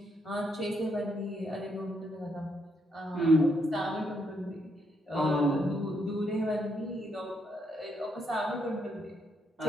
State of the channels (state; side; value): normal; both; correlation 0.76